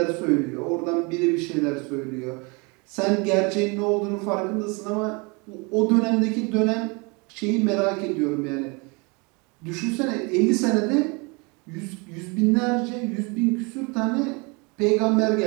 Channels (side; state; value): left; quieter; 29.6 dB